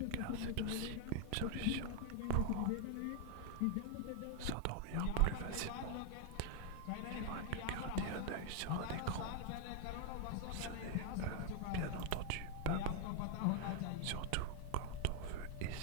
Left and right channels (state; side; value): different; both; correlation 0.00